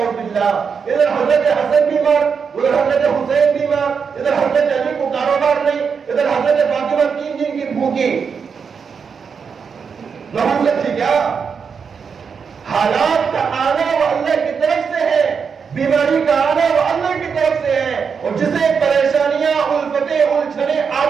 باللہ. ادھر حضرت حسن بیمار, ادھر حضرت حسین بیمار, ادھر حضرت علی کو کاروبار نہیں, ادھر حضرت فاطمہ 3 دن کی بھوکی. نحوست تھی کیا؟ حالات کا آنا وہ اللہ کی طرف سے ہے, بیماری کا آنا وہ اللہ کی طرف سے ہے, اور جسے پریشانیاں الفتیں الجھنیں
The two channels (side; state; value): left; quieter; 6.1 dB